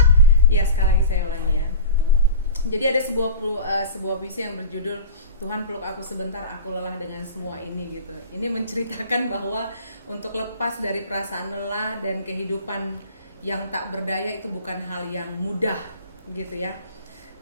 Iya, sekali lagi saya ulangi ya. Jadi ada sebuah puisi yang berjudul Tuhan peluk aku sebentar, aku lelah dengan semua ini gitu. Ini menceritakan bahwa untuk lepas dari perasaan lelah dan kehidupan yang tak berdaya itu bukan hal yang mudah gitu ya.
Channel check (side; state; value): both; inverted; correlation -0.33